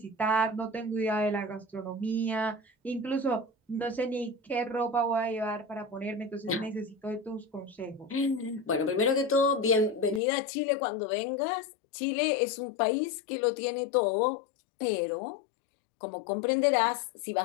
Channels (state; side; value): drops out; right; at 10.2 s